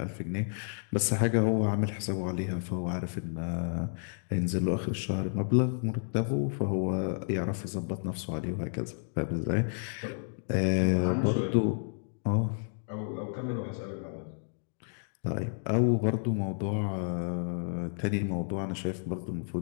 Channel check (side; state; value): right; silent; digital silence